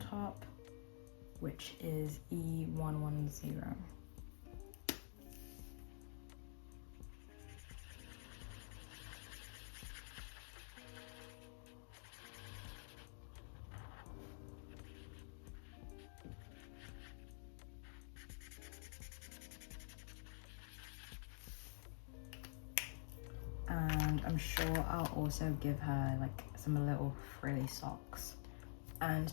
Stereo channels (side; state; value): right; silent; digital silence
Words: which is E110. And I'm sure I'll also give her like some little frilly socks. And